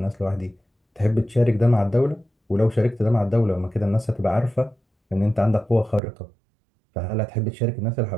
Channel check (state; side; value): drops out; left; at 6.0 s